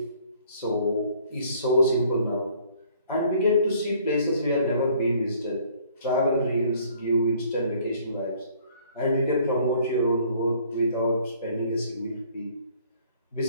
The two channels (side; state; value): both; inverted; correlation -0.59